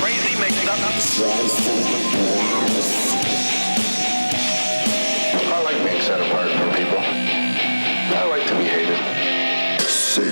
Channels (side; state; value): both; inverted; correlation -1.00